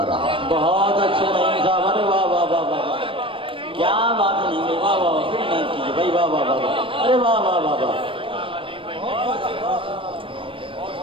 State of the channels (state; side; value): late; left; 0.25 ms